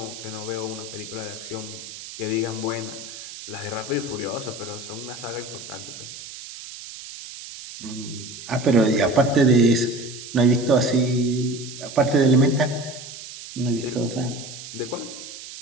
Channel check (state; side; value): noise; right; hiss, 12 dB below the sound